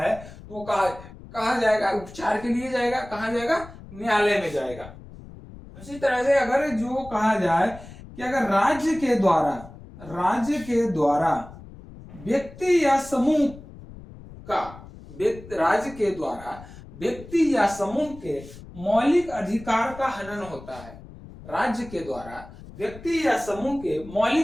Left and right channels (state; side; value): noise; left; rumble, 17 dB below the sound